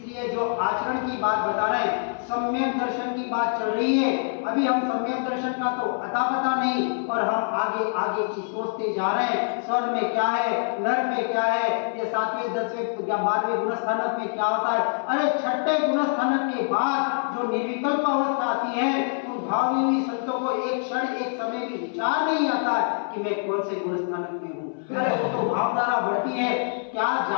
जो आचरण की बात बता रहे हैं, सम्यक दर्शन की बात चल रही है। अभी हम सम्यक दर्शन का तो अता पता नहीं, और हम आगे आगे की सोचते जा रहे हैं, स्वर्ग में क्या है, नरक में क्या है, ये 7वें 10वें या 12वें गुणस्थानक में क्या होता है। अरे 6ठे गुणस्थानक के बाद जो निर्विकल्प अवस्था आती है, उन भावी संतों को एक क्षण एक समय भी विचार नहीं आता है कि मैं कौन से गुणस्थानक में हूँ। अरे वो तो भावधारा बढ़ती है, क्या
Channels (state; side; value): silent; right; 59 dB below the other